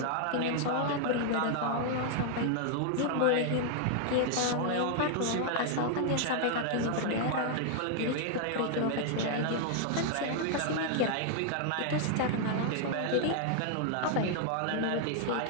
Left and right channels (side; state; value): both; different; correlation 0.00